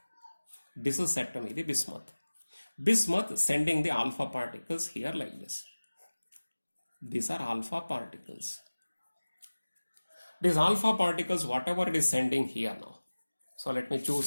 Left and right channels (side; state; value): both; inverted; correlation -1.00